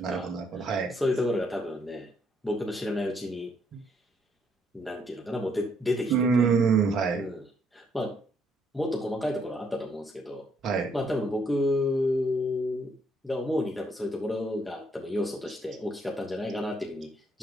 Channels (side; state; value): both; normal; correlation 0.71